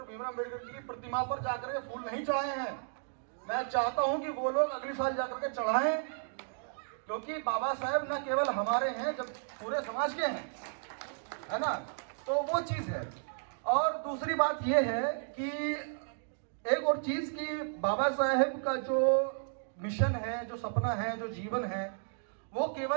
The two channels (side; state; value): left; silent; digital silence